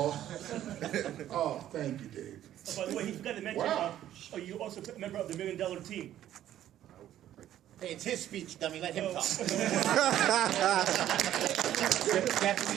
Oh, thank you, Dave. Oh, by the way, he forgot to mention, Wow. you also a member of the $1 Million Team. Hey, it's his speech, dummy. Let him talk.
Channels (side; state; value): left; quieter; 12.1 dB